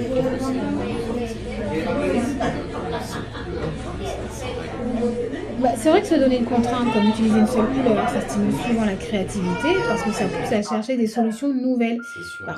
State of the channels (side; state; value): both; identical; correlation 1.00